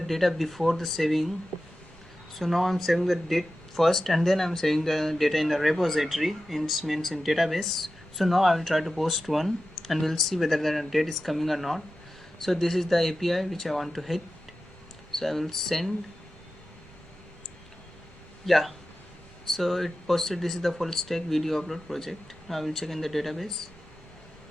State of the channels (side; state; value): both; normal; correlation 0.93